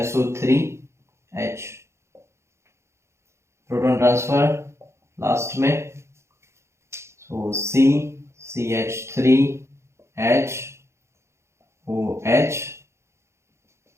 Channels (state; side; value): late; left; 0.13 ms